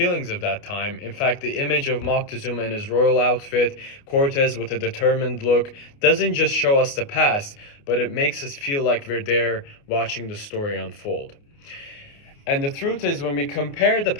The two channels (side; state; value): right; late; 29 ms